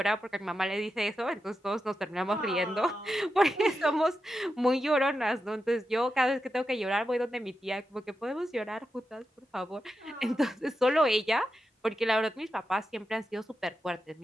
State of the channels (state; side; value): normal; both; correlation 0.89